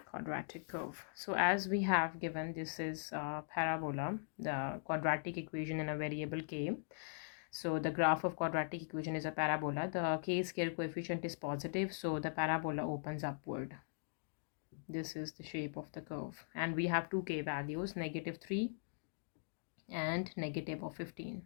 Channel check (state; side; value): silent; right; digital silence